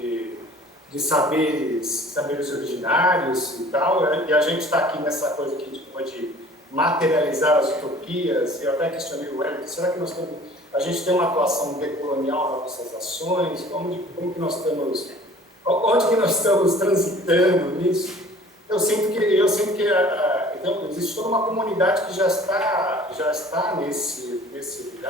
de saberes originários e tal, e a gente está aqui nessa coisa que a gente pode materializar as utopias. Eu até questionei o Wellington, será que a gente tem uma atuação decolonial nas nossas ações? Como que nós estamos, onde que nós estamos transitando nisso? Eu sinto que então, existe toda uma comunidade que já está nesse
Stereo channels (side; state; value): both; normal; correlation 0.49